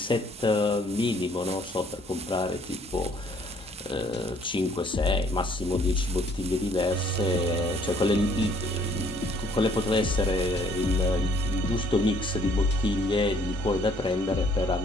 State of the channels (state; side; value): normal; both; correlation 0.63